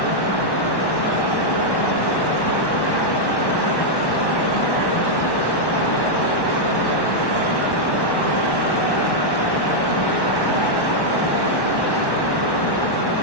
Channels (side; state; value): right; late; 1.1 ms